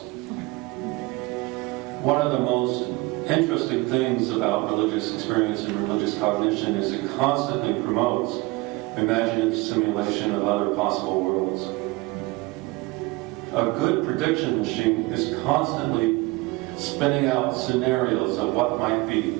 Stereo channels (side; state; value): left; quieter; 22.8 dB